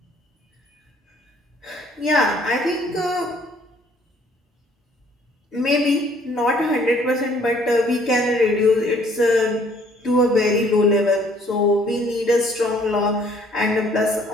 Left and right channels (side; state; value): both; normal; correlation 0.61